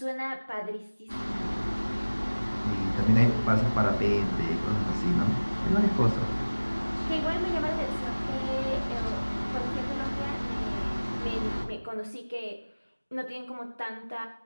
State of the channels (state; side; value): inverted; both; correlation -1.00